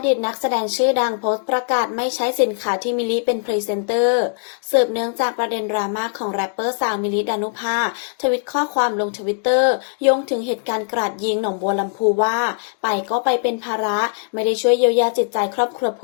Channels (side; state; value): right; silent; digital silence